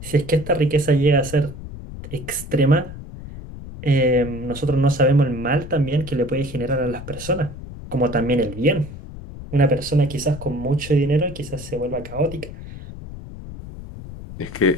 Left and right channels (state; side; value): noise; left; rumble, 12 dB below the sound